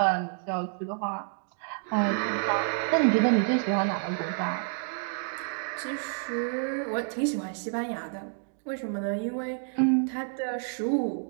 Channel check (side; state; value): left; silent; 59 dB below the other